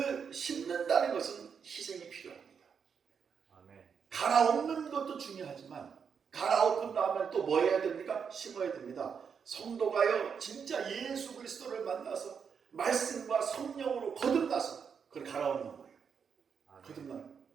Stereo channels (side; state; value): left; quieter; 6.6 dB